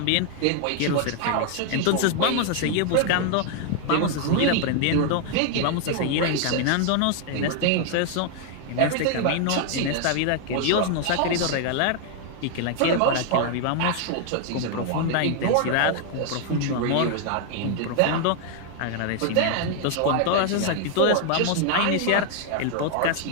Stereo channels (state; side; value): different; both; correlation 0.00